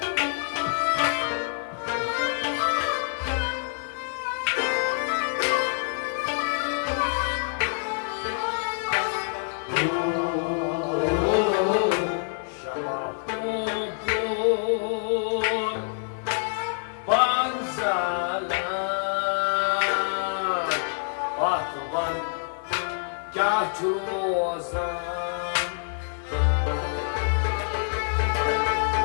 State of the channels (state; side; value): silent; right; 60 dB below the other